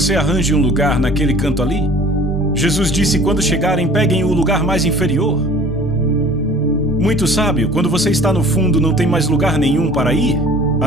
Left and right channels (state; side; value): normal; both; correlation 0.47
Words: arranje um lugar naquele canto ali. Jesus disse: quando chegarem, peguem o lugar mais inferior. Muito sábio, quando você está no fundo, não tem mais lugar nenhum para ir,